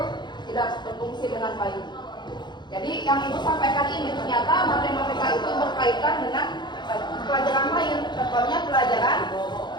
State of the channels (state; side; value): late; right; 0.21 ms